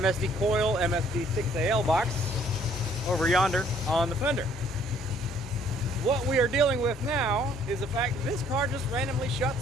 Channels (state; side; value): normal; both; correlation 0.61